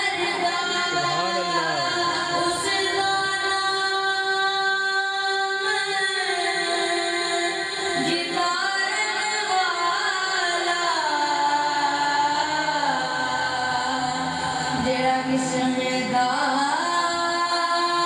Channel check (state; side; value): identical; both; correlation 1.00